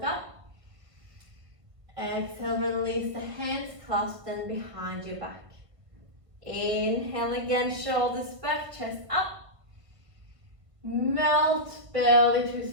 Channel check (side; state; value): left; late; 1.7 ms